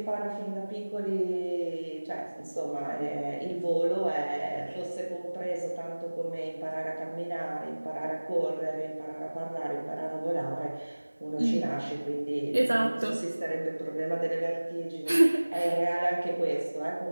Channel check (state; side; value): inverted; both; correlation -1.00